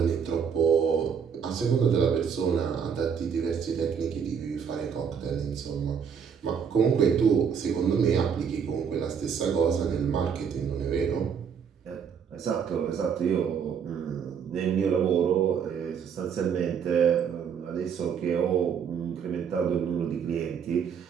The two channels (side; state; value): left; quieter; 7.1 dB